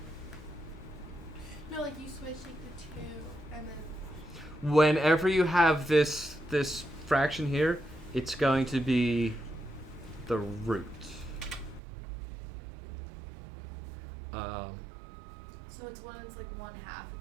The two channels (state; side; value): drops out; left; at 11.8 s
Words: No, like you switch like the 2 and then. Whenever you have this fraction here, it's going to be the root. So it's when it's like 1/2,